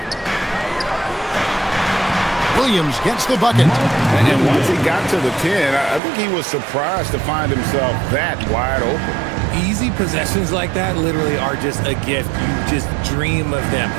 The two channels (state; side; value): drops out; left; at 6.0 s